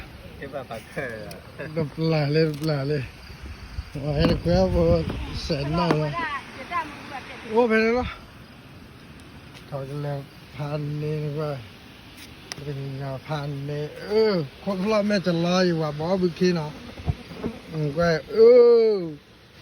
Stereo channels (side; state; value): both; identical; correlation 1.00